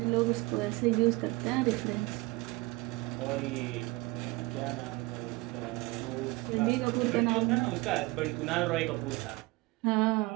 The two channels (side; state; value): left; quieter; 22.7 dB